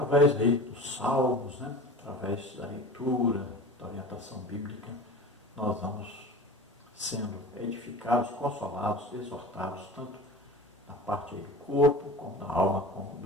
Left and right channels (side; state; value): both; normal; correlation 0.35